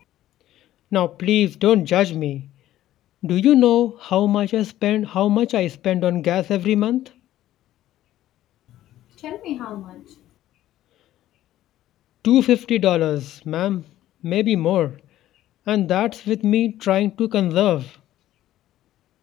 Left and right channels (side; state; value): right; quieter; 13.6 dB